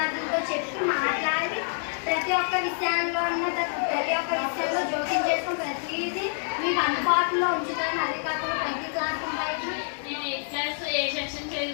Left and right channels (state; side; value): silent; right; digital silence